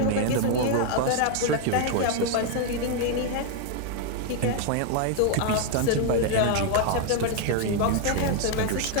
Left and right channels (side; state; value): both; different; correlation 0.00